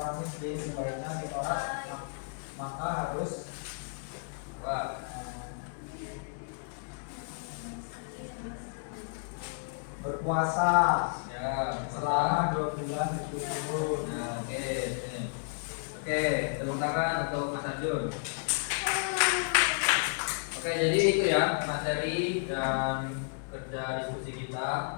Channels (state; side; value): silent; right; digital silence